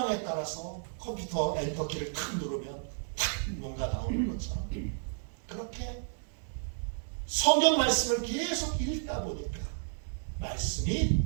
따라서 컴퓨터 엔터키를 탁 누르면 탁 뭔가 나오는 것처럼 그렇게 성경 말씀을 계속 읽다 보니까 말씀이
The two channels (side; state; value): left; silent; digital silence